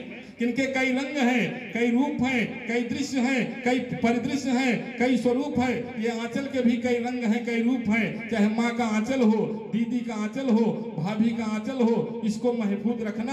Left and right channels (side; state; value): both; identical; correlation 1.00